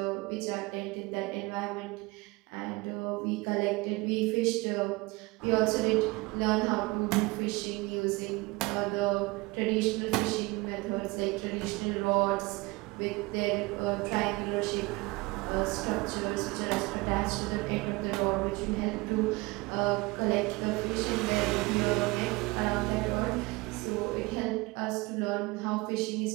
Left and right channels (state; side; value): quieter; left; 23.8 dB